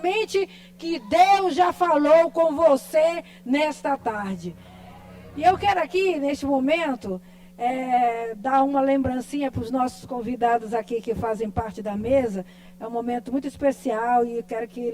que Deus já falou com você nesta tarde. E eu quero aqui, neste momento, dar uma lembrancinha para os nossos convidados aqui que fazem parte da mesa. É um momento muito especial e eu quero que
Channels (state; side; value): identical; both; correlation 1.00